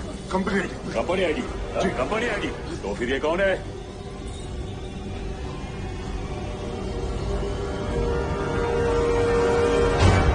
Company company ID. Company ID तो फिर ये कौन है?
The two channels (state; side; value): identical; both; correlation 1.00